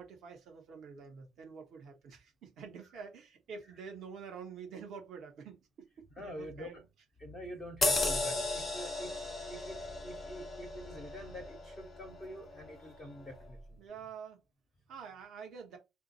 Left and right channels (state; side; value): normal; both; correlation 0.78